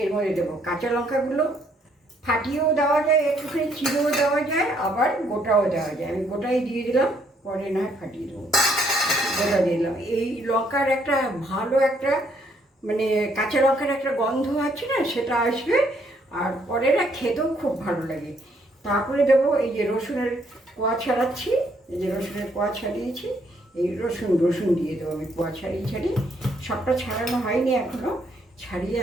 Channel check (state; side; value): normal; both; correlation 0.69